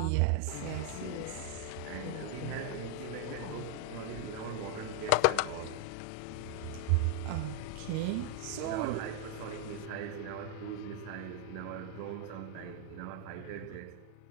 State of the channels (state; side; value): different; both; correlation 0.00